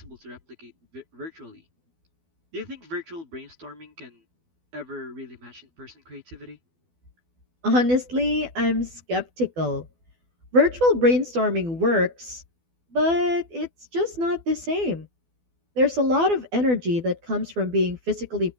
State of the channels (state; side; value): late; left; 12 ms